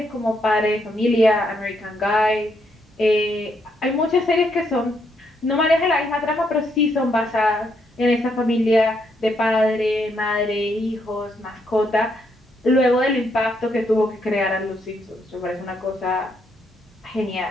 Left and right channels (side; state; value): both; normal; correlation 0.76